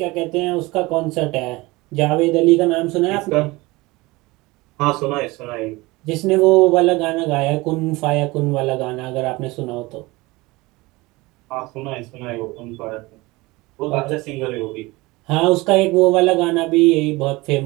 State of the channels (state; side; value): quieter; left; 22.1 dB